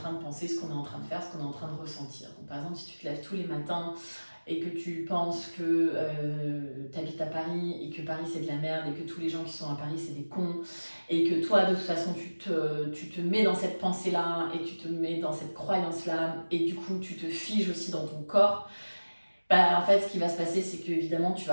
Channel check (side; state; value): both; inverted; correlation -1.00